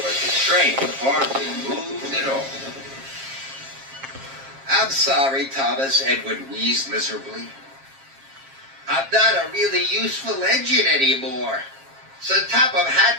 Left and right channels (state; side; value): late; left; 7.4 ms